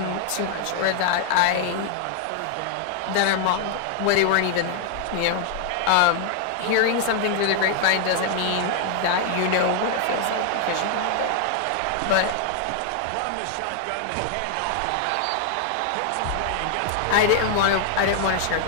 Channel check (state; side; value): different; both; correlation 0.00